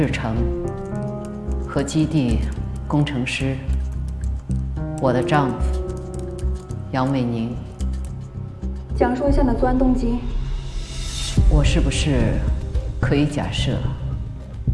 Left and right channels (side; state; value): both; identical; correlation 1.00